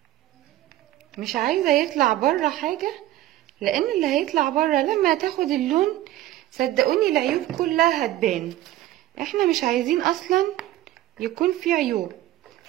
مش عايزه يطلع بره حاجه، لان اللي هيطلع بره لما تاخد اللون صدقوني العيوب كلها هتبان. احنا مش عايزين اصلا يكون في عيوب،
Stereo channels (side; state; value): left; quieter; 14.7 dB